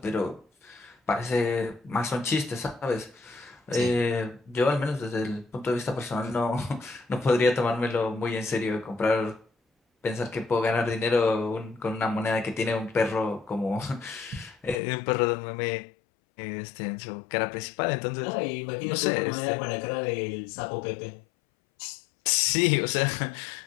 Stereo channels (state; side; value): drops out; right; at 14.8 s